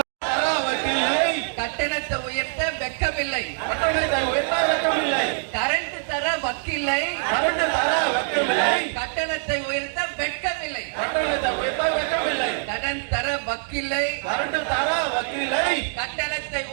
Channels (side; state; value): left; silent; digital silence